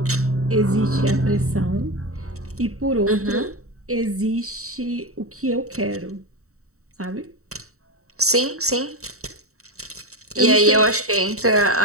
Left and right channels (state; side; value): late; left; 0.64 ms